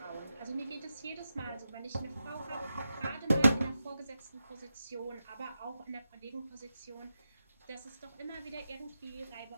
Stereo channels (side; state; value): both; inverted; correlation -0.90